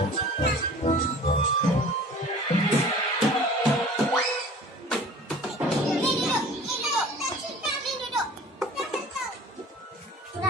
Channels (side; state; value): both; normal; correlation 0.45